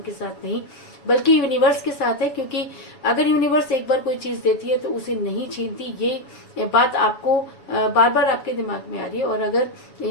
के साथ नहीं बल्कि यूनिवर्स के साथ है। क्योंकि अगर यूनिवर्स एक बार कोई चीज देती है तो उसे नहीं छीनती, ये बात आपको बार बार आपके दिमाग में आ रही है। और अगर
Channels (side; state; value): right; late; 7.2 ms